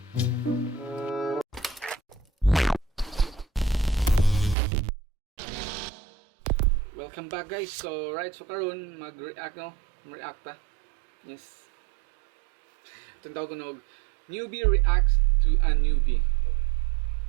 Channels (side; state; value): left; drops out; at 4.5 s